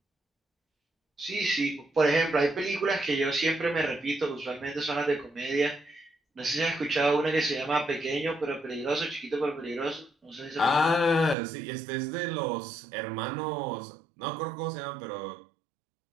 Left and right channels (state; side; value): drops out; left; at 11.4 s